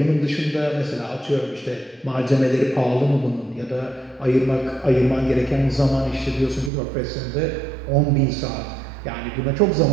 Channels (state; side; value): drops out; left; at 6.7 s